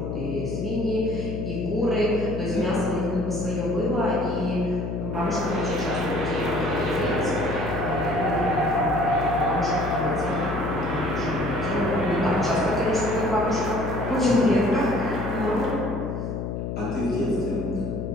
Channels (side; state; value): left; noise; hum, 4 dB below the sound